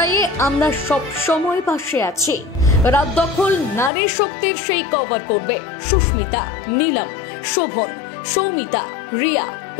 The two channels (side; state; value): right; drops out; at 3.9 s